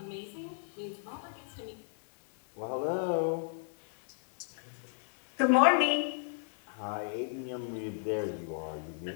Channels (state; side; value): silent; right; 55 dB below the other